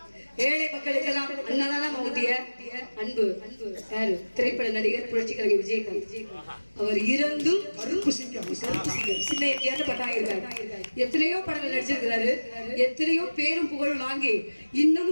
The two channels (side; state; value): both; inverted; correlation -1.00